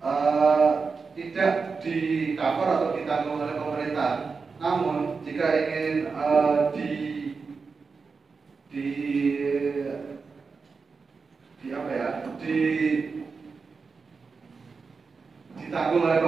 tidak di cover atau ditanggung oleh pemerintah. Namun jika ingin ditanggung oleh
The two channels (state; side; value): quieter; left; 4.8 dB